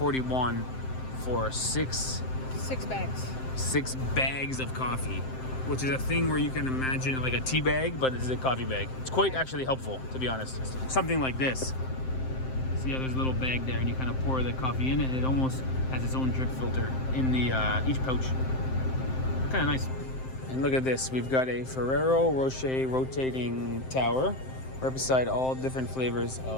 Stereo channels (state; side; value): late; right; 7.7 ms